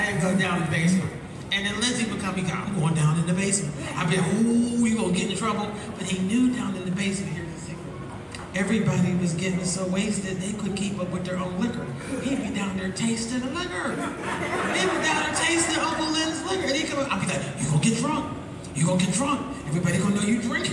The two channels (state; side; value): identical; both; correlation 1.00